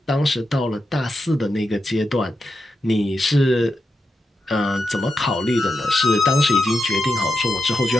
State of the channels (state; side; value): normal; both; correlation 0.87